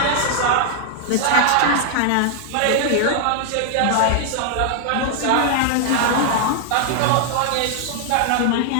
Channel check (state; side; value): different; both; correlation 0.00